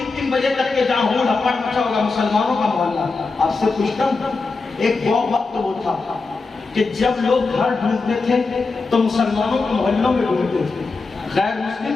3 بجے تک کے جہاں ہول ہپڑ مچا ہوگا مسلمانوں کا محلہ۔ آپ سے پوچھتا ہوں ایک وقت وہ تھا کہ جب لوگ گھر ڈھونڈتے تھے تو مسلمانوں کے محلوں میں ڈھونڈتے تھے، غیر مسلم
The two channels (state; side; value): quieter; right; 4.0 dB